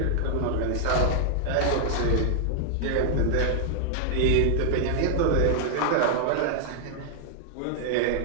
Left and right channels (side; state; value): both; different; correlation -0.01